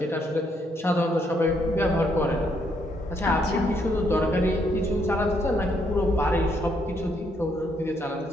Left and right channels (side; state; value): both; normal; correlation 0.73